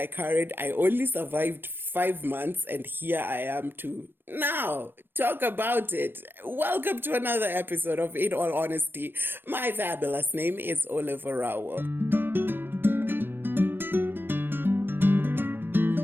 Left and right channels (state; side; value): late; left; 0.097 ms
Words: carried. I only survived 5 months, and here I am to now talk about it. Welcome to another episode of In All Honesty. My fabulous name is Orawo Olave.